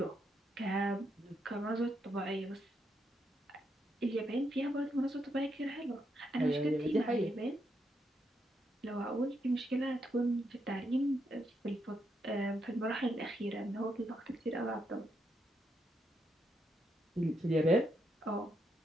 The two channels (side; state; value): both; normal; correlation 0.80